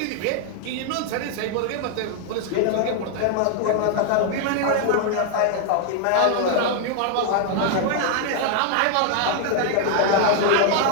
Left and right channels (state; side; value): different; both; correlation 0.00